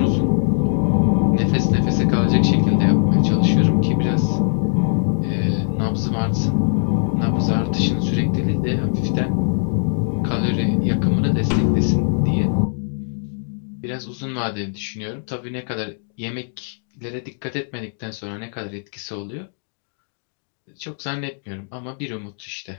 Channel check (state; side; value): silent; right; digital silence